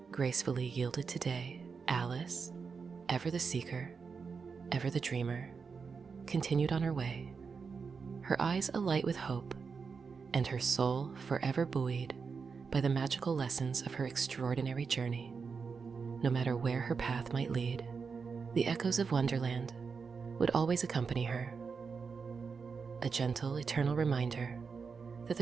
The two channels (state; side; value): quieter; left; 5.4 dB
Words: gracefully yielded to day, Alice, ever the seeker, ever the dreamer, continued on her way, her eyes alight with hope, and her soul forever buoyed by the magical lessons of her extraordinary journey. No matter where her path might lead, the echoes of Wonderland would always accompany her, a gentle, eternal reminder that